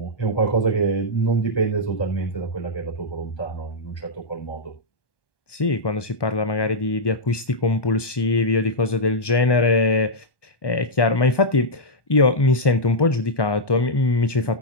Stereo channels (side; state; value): right; late; 1.2 ms